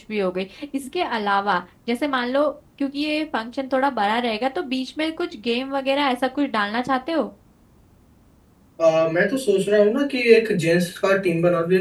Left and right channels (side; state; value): both; identical; correlation 1.00